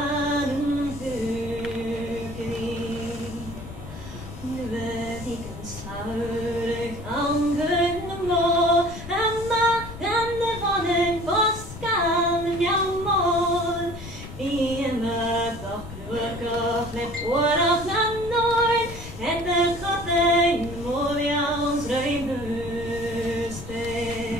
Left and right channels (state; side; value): noise; left; rumble, 12 dB below the sound